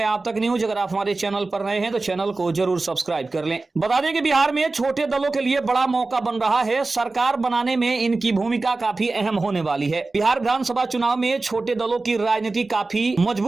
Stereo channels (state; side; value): quieter; left; 3.5 dB